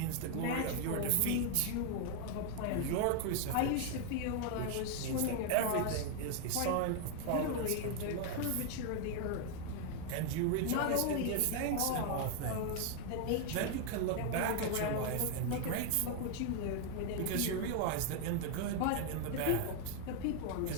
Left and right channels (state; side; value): different; both; correlation 0.00